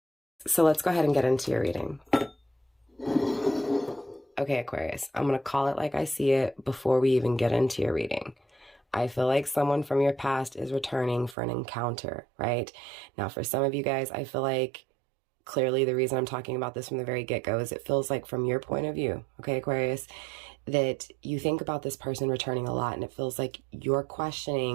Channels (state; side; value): drops out; left; at 11.4 s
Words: So let's go ahead and get into your reading. Okay, Aquarius, I'm going to call it like I see it before we even get into your reading. I feel like someone from your past is returning for an encounter, right? Now, for some of you guys, I feel like clearly the reason I'm talking about this from the very get-go is it feels like from your point of view, okay, Aquarius, that you think about this person returning a lot, and it feels like you're